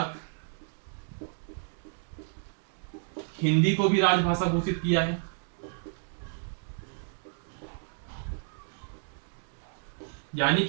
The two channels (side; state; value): left; silent; 57 dB below the other